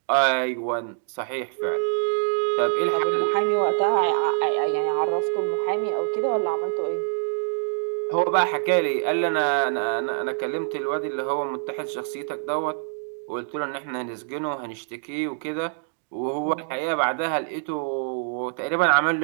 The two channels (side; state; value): left; silent; digital silence